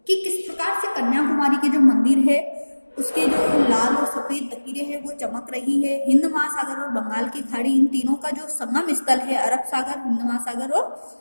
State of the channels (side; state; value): both; inverted; correlation -1.00